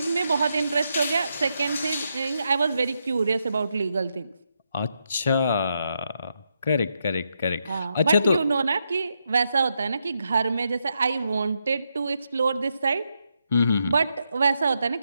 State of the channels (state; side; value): inverted; both; correlation -0.82